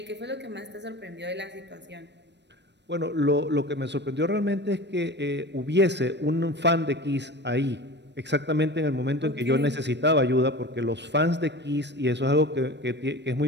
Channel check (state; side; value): late; left; 0.50 ms